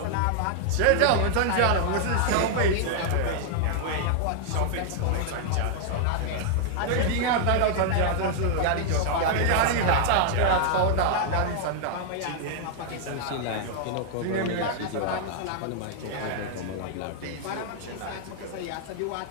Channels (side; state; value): both; different; correlation 0.00